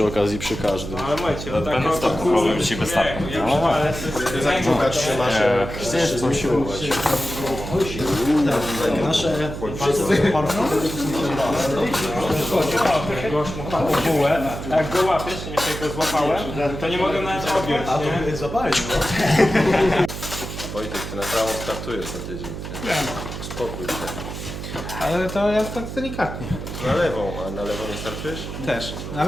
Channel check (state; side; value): noise; right; hum, 8 dB below the sound